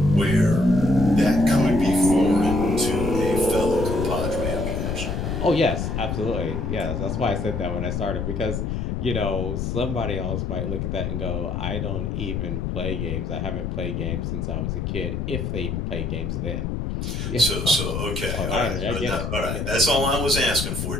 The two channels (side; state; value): left; noise; rumble, 2 dB below the sound